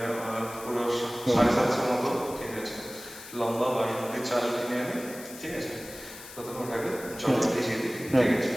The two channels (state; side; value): noise; left; hiss, 15 dB below the sound